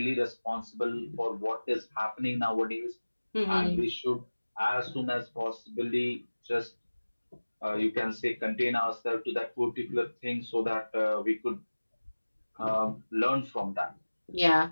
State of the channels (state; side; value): inverted; both; correlation -1.00